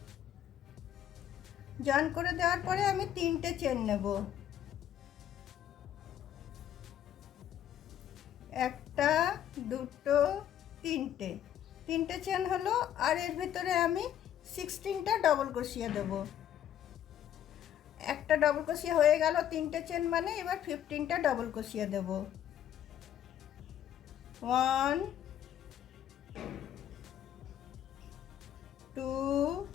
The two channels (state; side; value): quieter; right; 10.6 dB